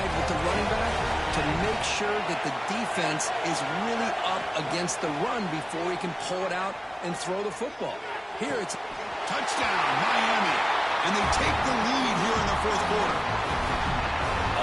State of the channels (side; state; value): both; identical; correlation 1.00